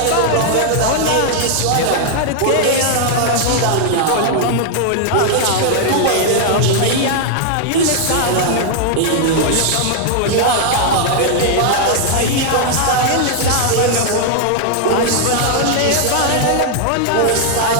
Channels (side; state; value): both; different; correlation 0.00